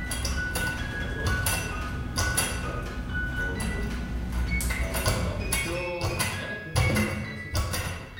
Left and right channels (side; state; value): both; identical; correlation 1.00